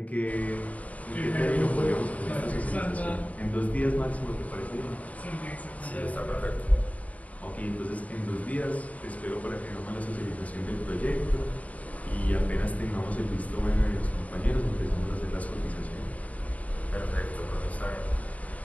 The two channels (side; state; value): right; late; 0.070 ms